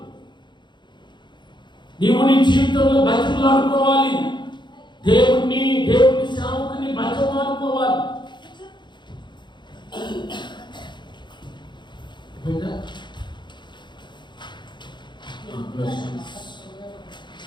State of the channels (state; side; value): late; right; 0.22 ms